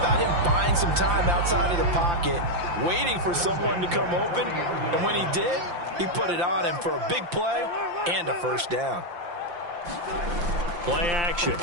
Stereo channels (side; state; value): left; late; 5.8 ms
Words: him buying some time outside of the pocket, waiting for someone to come open, and when he did, he put it on him for a big play and a 1st down. Play action.